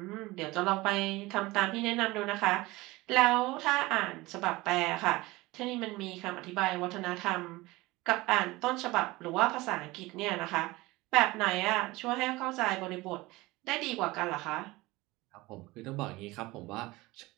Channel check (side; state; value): left; quieter; 20.8 dB